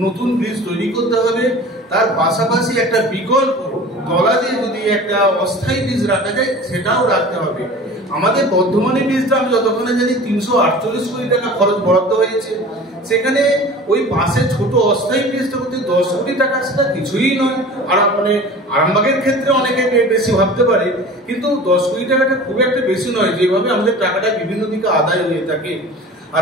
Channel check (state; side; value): normal; both; correlation 0.40